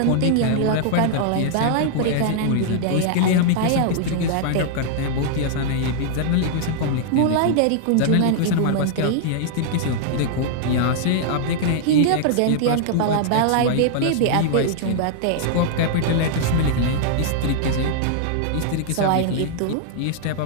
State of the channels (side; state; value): both; different; correlation -0.01